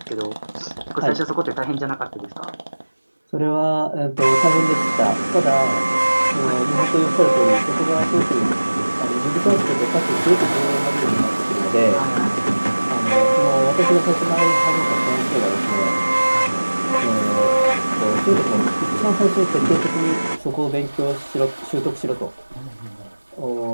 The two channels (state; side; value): inverted; both; correlation -1.00